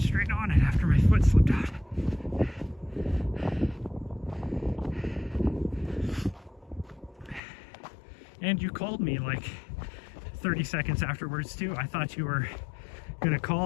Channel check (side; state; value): right; drops out; at 7.4 s